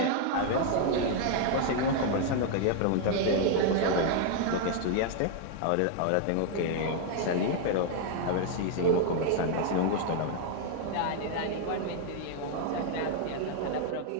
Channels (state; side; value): different; both; correlation 0.00